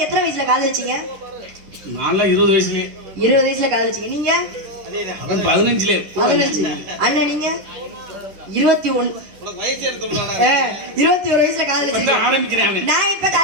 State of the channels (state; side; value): late; left; 11 ms